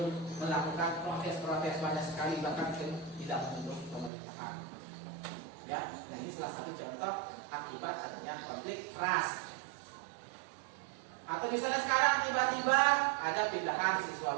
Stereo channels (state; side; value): drops out; left; at 4.1 s